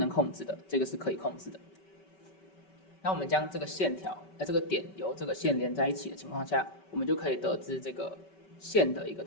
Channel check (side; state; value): right; late; 5.2 ms